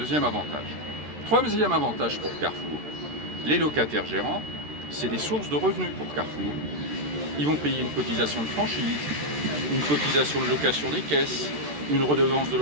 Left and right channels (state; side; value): late; left; 13 ms